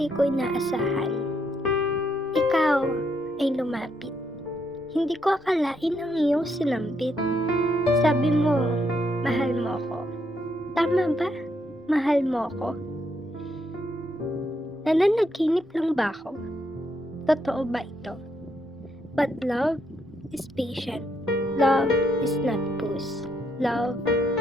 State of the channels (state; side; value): normal; both; correlation 0.76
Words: ko inaasahan. Ikaw ay lumapit. Hindi ko akalain ang iyong sinambit. Sabi mo, mahal mo ko. Tama ba? Mahal mo ko? Nananaginip lang ba ako? Totoo ba ito? But love is patient. Love is not puss. Love